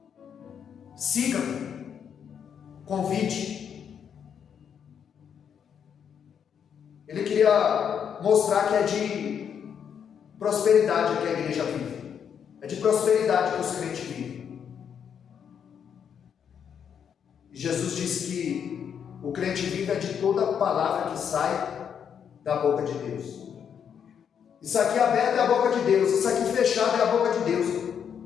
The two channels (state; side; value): quieter; right; 7.9 dB